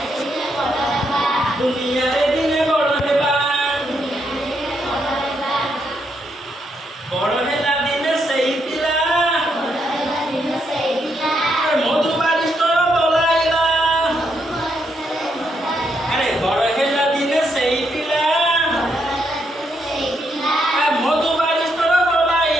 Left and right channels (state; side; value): normal; both; correlation 0.78